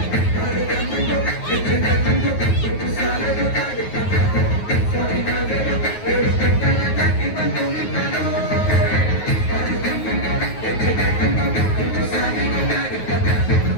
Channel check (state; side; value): late; right; 9.4 ms